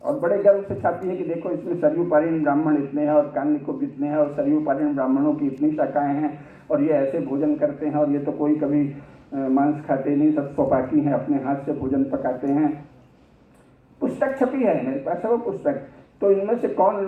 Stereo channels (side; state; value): both; identical; correlation 1.00